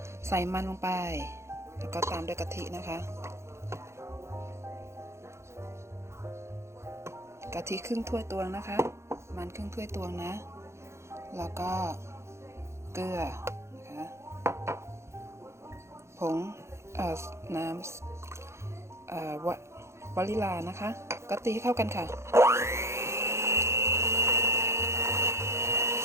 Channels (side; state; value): left; late; 0.13 ms